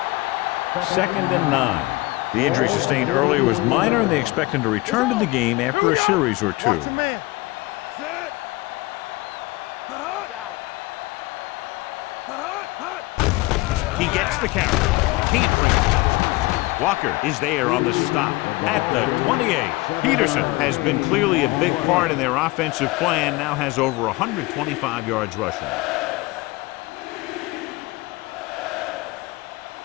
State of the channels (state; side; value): quieter; right; 21.4 dB